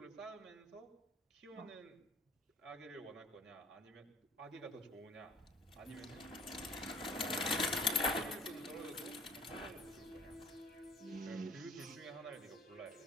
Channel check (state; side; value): normal; both; correlation 0.55